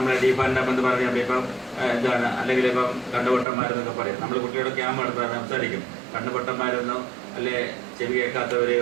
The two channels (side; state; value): left; drops out; at 3.5 s